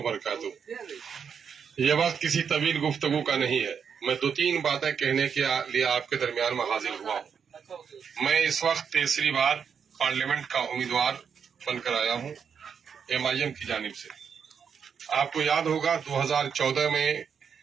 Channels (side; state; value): left; quieter; 6.9 dB